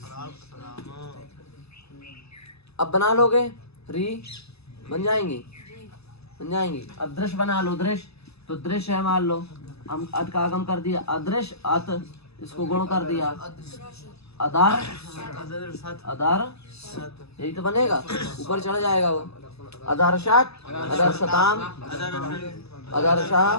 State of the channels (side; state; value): right; late; 0.79 ms